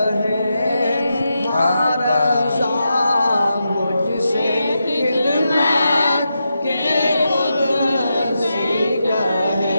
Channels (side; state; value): both; inverted; correlation -0.87